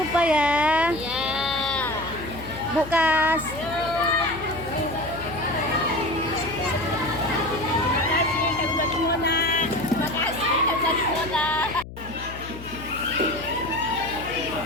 ya, Bu Kas.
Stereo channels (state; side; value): noise; left; hum, 13 dB below the sound